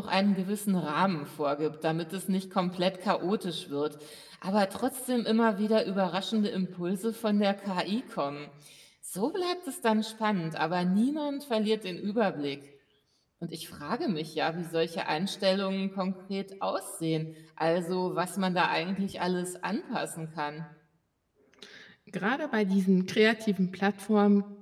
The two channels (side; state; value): both; identical; correlation 1.00